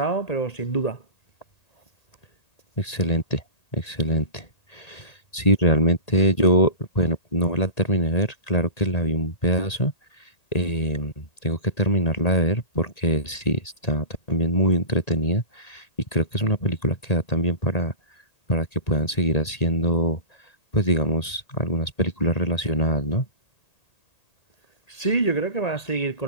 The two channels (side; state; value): right; late; 1.8 ms